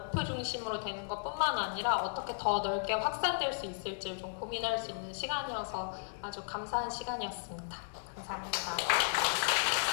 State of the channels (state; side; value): silent; right; digital silence